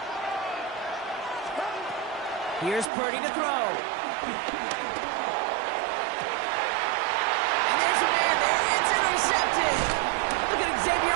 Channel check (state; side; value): drops out; left; at 2.9 s